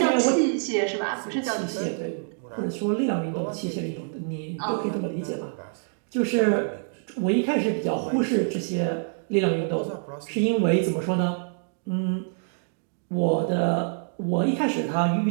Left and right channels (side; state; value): left; silent; 61 dB below the other